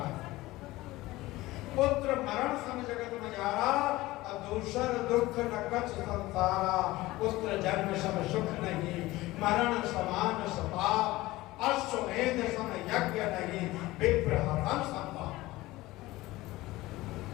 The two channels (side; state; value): right; quieter; 18.6 dB